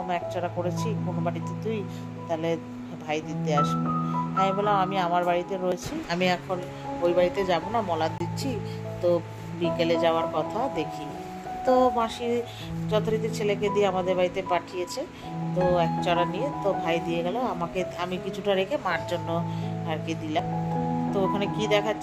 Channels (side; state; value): both; identical; correlation 1.00